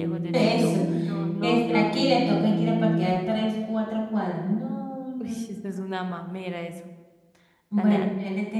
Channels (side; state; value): both; identical; correlation 1.00